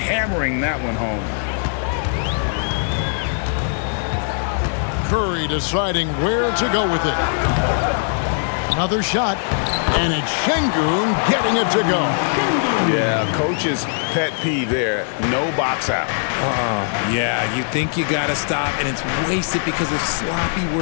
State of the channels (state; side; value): silent; right; digital silence